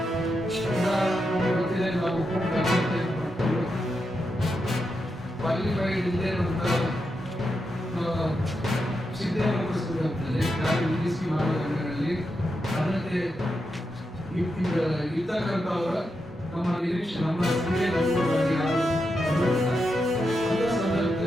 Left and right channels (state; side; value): normal; both; correlation 0.86